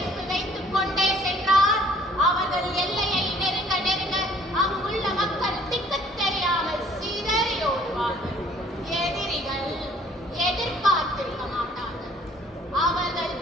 வைத்துக் கொண்டே சென்றால் அவர்கள் எல்லையை நெருங்க நெருங்க அங்குள்ள மக்கள் திக்கு தெரியாமல் சிதறி ஓடுவார்கள். எதிரிகள் எதிர்பார்த்திருக்க மாட்டார்கள். அவர்கள்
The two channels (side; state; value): both; normal; correlation 0.58